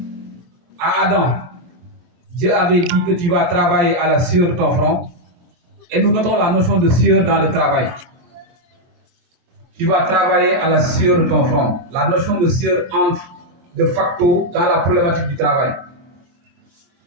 à Adam, Dieu avait dit que tu vas travailler à la sueur de ton front. Et nous notons la notion de sueur dans le travail. Tu vas travailler à la sueur de ton front. La notion de sueur entre de facto dans la problématique du travail.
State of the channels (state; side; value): late; left; 23 ms